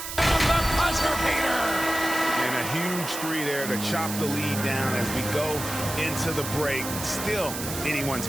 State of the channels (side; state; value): right; noise; hiss, 7 dB below the sound